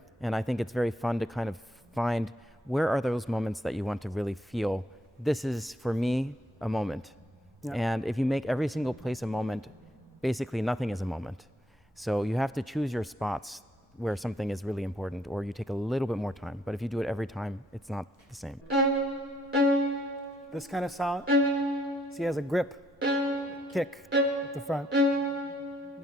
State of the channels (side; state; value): both; normal; correlation 0.71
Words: And I think it's very fun to kind of find where are those moments that you want to really feel, this is, for me, a moment. Yeah. And if you make every single place a moment, basically nothing is a moment. So you have to choose your spots where something is really important, or you take a little bit more time. But if you do it every time, it's not the same. This kind of sound, see, has a grip, kick at the front,